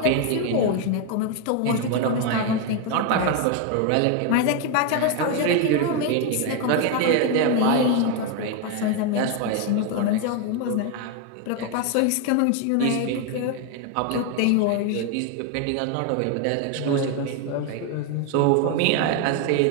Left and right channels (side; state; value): both; different; correlation 0.01